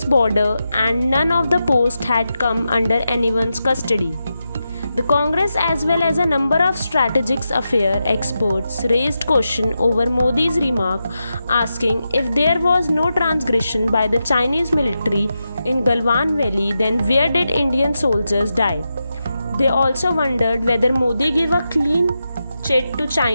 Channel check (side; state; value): both; inverted; correlation -0.88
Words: border and none of the posts had come under anyone's custody. The Congress as well as a number of strategic affairs experts raised question over Modi's remark, asking if there was no transgression by the Chinese military in Galwan Valley, then where did Indian soldiers die? They also wondered whether Modi gave a clean chit to